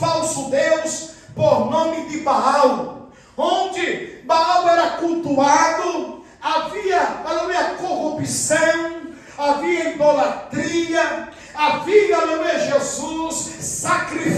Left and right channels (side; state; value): both; identical; correlation 1.00